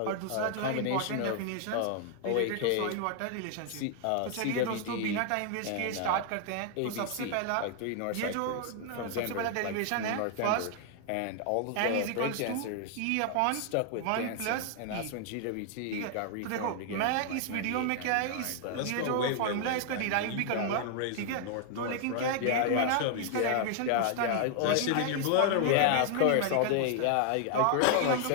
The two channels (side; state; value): both; different; correlation 0.00